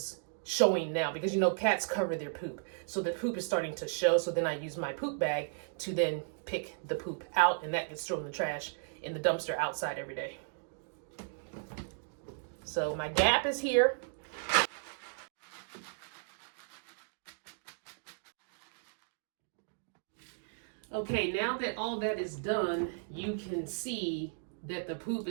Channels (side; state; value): left; silent; digital silence